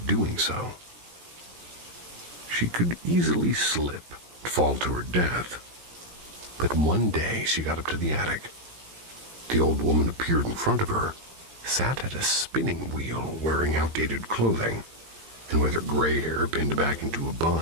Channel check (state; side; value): late; left; 17 ms